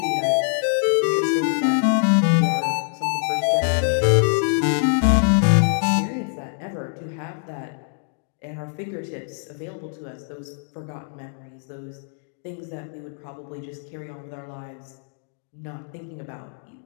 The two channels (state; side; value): silent; right; digital silence